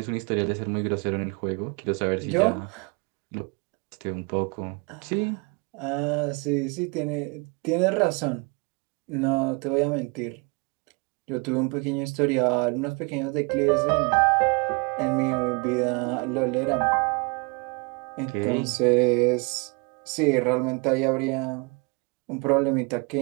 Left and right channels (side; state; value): left; quieter; 30.5 dB